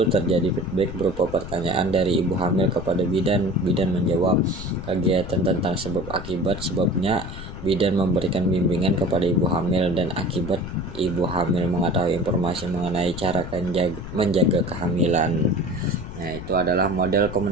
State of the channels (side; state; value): left; noise; rumble, 10 dB below the sound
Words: terjadi feedback berupa pertanyaan dari ibu hamil kepada bidan. Bidan menjawab kegiatan tentang sebab akibat, sebabnya bidan memberikan bimbingan kepada ibu hamil, dan akibat ibu hamil mengetahui informasi mengenai cara menjaga kehamilan. Nah, itu adalah model